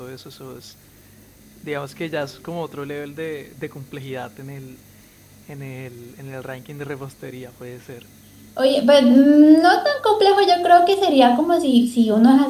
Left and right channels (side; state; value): both; identical; correlation 1.00